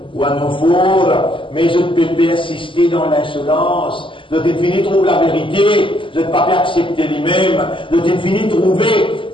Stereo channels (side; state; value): right; late; 0.25 ms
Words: wa nufur. Mais je ne peux pas assister dans l'insolence. Je t'ai trouver la vérité, je ne peux pas accepter lui-même, je t'ai trouver